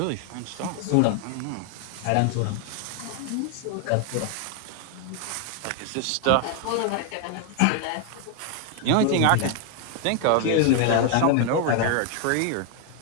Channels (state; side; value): different; both; correlation 0.00